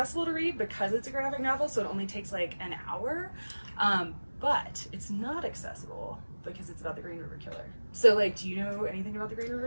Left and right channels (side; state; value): both; inverted; correlation -1.00